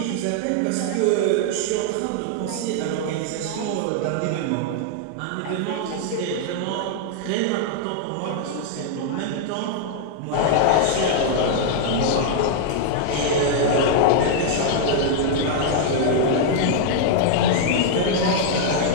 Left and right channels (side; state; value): both; different; correlation -0.01